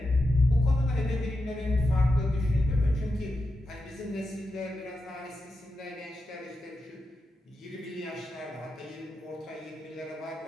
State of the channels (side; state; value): both; normal; correlation 0.88